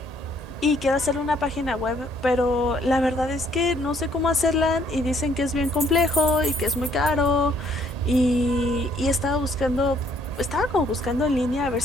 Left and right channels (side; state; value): both; normal; correlation 0.65